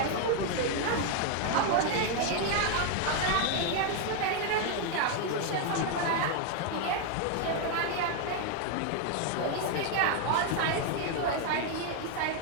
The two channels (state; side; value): different; both; correlation 0.01